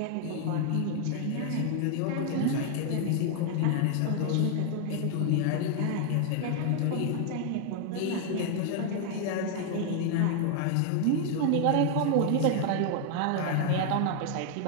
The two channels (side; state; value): both; different; correlation 0.00